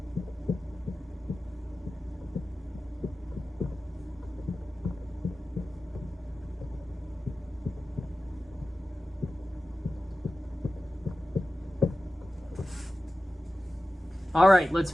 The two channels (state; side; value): normal; both; correlation 0.95